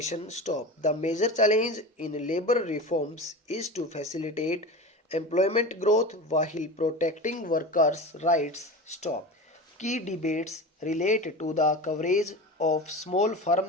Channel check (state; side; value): normal; both; correlation 0.29